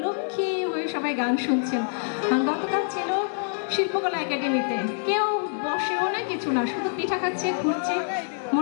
লক্ষ্মী হয়ে সবাই গান শুনছেন। গতকাল ছিল শিল্পকলা একাডেমিতে, কেউ বসেও না কিছু না, শুধু পিঠা খাচ্ছে ঘুরছে,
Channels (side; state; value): right; silent; 61 dB below the other